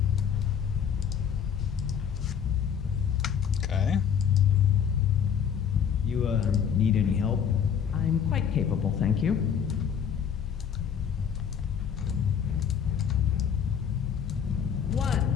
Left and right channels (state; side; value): quieter; right; 7.9 dB